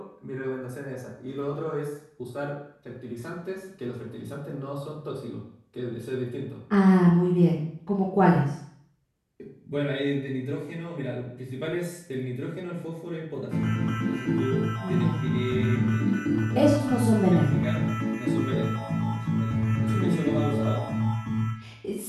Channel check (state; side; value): identical; both; correlation 1.00